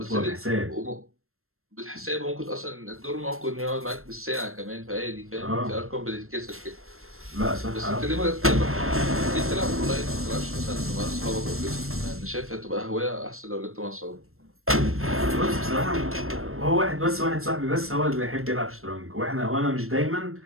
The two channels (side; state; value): left; late; 0.62 ms